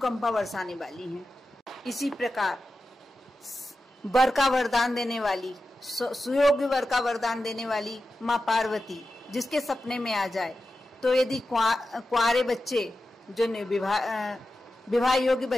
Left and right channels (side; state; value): both; normal; correlation 0.92